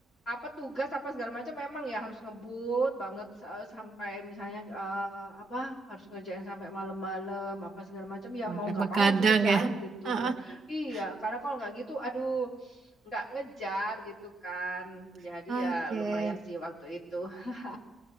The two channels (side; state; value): left; quieter; 3.0 dB